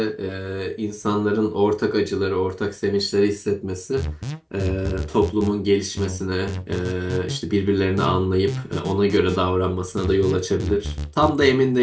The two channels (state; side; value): identical; both; correlation 1.00